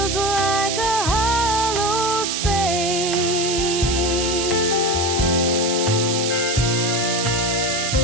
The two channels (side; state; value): right; noise; hiss, 2 dB below the sound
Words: like a hollow space.